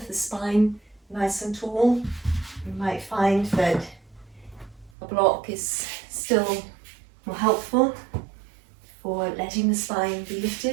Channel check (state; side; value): drops out; left; at 4.9 s